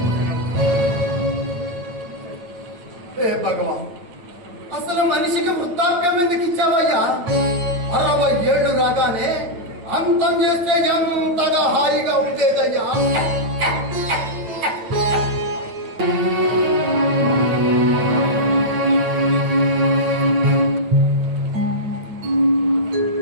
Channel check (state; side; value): late; left; 9.1 ms